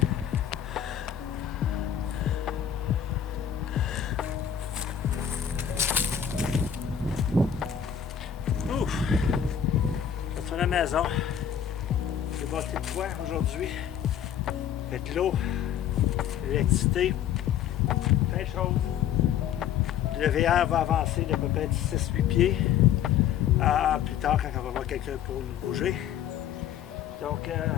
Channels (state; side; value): quieter; right; 9.3 dB